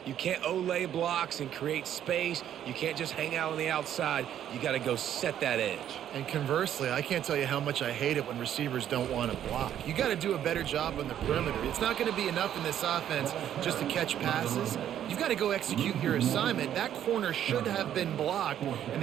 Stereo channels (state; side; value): quieter; left; 10.5 dB